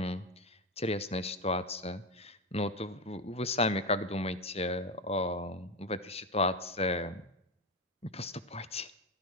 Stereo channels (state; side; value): normal; both; correlation 0.15